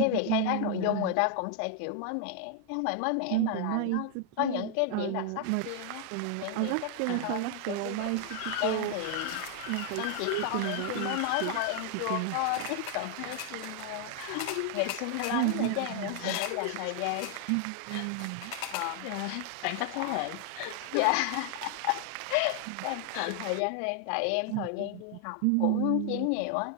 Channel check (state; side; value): different; both; correlation 0.00